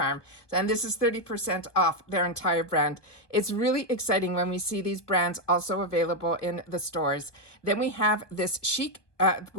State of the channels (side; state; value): right; late; 1.2 ms